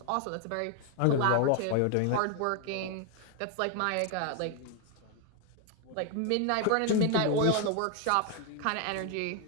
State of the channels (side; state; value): both; different; correlation 0.00